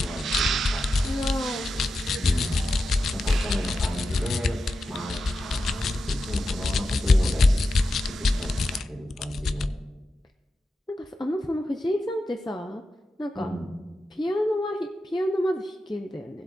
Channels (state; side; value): normal; both; correlation 0.90